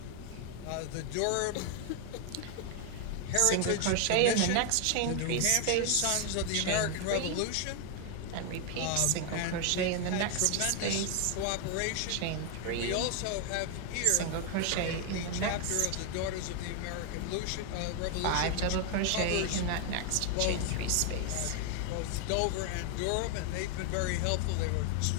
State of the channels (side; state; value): both; different; correlation 0.00